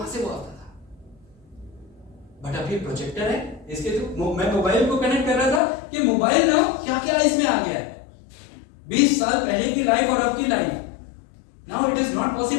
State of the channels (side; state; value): right; drops out; at 5.6 s